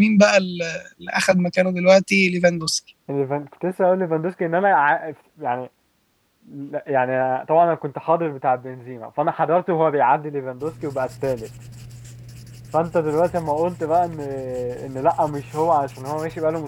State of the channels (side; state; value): both; identical; correlation 1.00